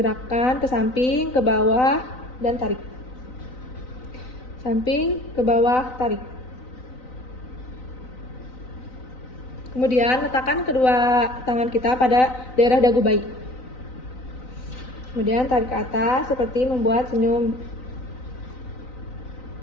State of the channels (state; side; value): late; right; 3.9 ms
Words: ke samping, ke bawah, dan tarik. Samping, ke bawah, tarik. Kemudian letakkan kedua tangan kita pada daerah dagu bayi. Kemudian tarik ke atas seperti membuat senyum.